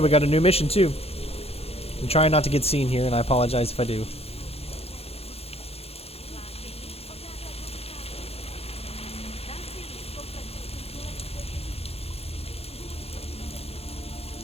we got a new mission too. I'm trying not to get seen here, and I apologize if I do.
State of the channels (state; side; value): late; right; 0.29 ms